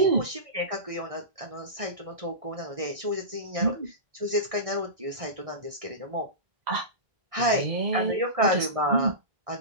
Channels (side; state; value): left; late; 1.6 ms